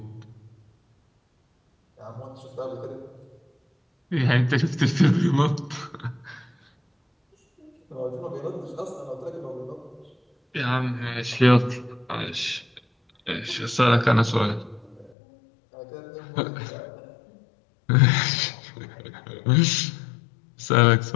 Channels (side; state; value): right; drops out; at 15.1 s